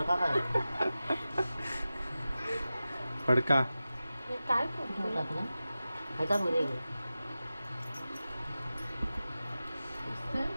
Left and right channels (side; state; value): both; inverted; correlation -0.95